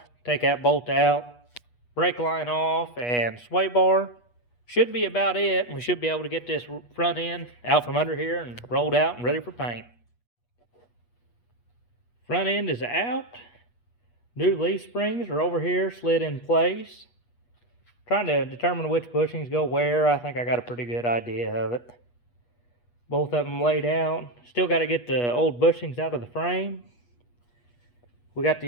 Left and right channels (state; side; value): late; right; 8.3 ms